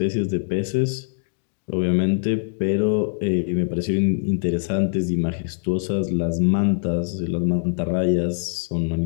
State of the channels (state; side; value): silent; right; digital silence